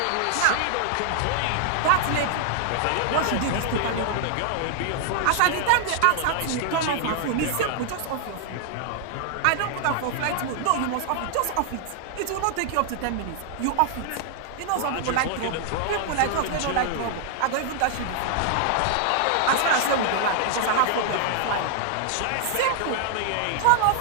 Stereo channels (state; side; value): different; both; correlation 0.00